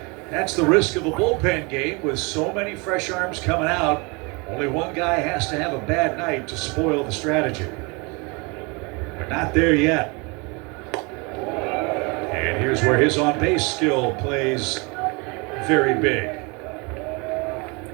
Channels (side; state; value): left; quieter; 29.1 dB